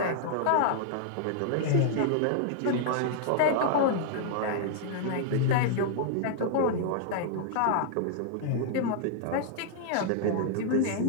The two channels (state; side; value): different; both; correlation -0.01